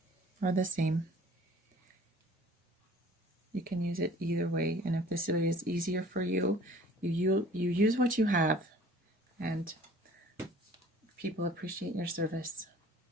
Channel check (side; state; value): both; normal; correlation 0.50